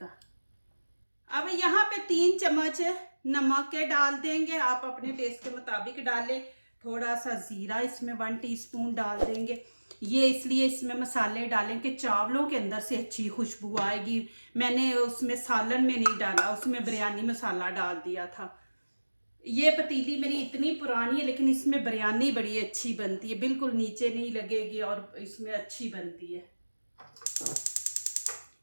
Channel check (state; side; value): inverted; both; correlation -1.00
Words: अब यहाँ पे 3 चम्मच नमक के डाल देंगे, आप अपने टेस्ट के मुताबिक डालें। थोड़ा सा ज़ीरा इसमें 1 टीस्पून डाल देंगे। ये इसलिए इसमें मसाले डालें कि चावलों के अंदर से अच्छी खुशबू आएगी। मैंने उसमें सालन में नहीं डाला, उसमें बिरयानी मसाला डाल दिया था। ये पतीली मेरी इतनी पुरानी है लेकिन इसमें बिरयानी बड़ी अच्छी बनती है, बिल्कुल नीचे नहीं लगेगी और इसमें अच्छी बनती है।